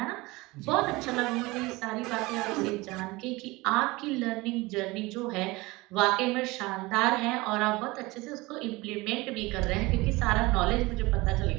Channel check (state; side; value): quieter; left; 22.2 dB